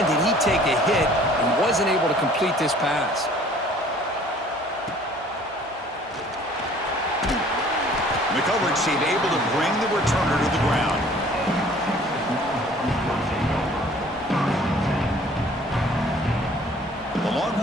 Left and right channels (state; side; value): normal; both; correlation 0.53